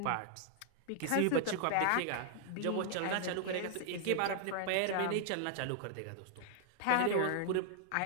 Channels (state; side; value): different; both; correlation -0.01